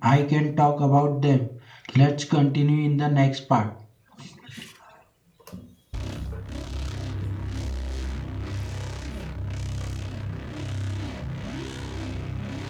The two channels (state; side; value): identical; both; correlation 1.00